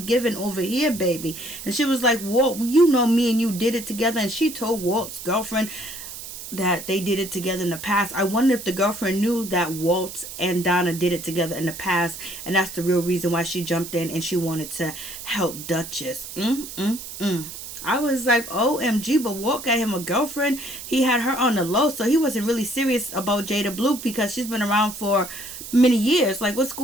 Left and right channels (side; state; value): right; noise; hiss, 11 dB below the sound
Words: over here, baby. And she was like, Walt, you know me and you did it together. And she told Walt's girlfriend that they did it together in the past. I wonder if the girlfriend knew that Walt and Donna did it together in the past, and that's the real reason why she jumped in and she wanted to help Duchess. I was like, OMG, but Walt got him a girlfriend. He had her on the low, so he wasn't really serious about Jada Blue because she's been around for many years. Like, what's